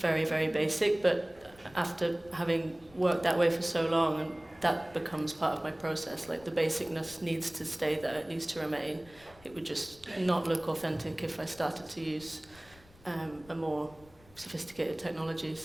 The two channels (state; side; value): noise; left; rumble, 25 dB below the sound